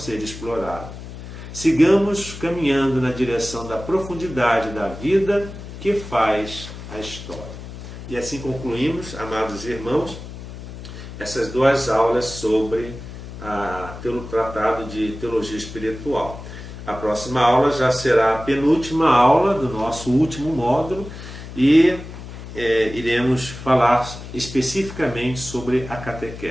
explorado. Sigamos caminhando na direção da profundidade da vida que faz a história. E assim concluímos, amados irmãos, essas duas aulas sobre o Tratado de Teologia Espiritual. A próxima aula já será a penúltima aula do nosso último módulo e iremos falar especificamente sobre a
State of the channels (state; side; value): noise; left; hum, 12 dB below the sound